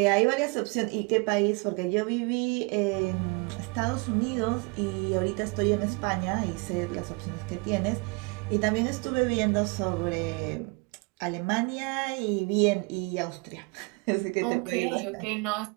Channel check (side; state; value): left; quieter; 29.4 dB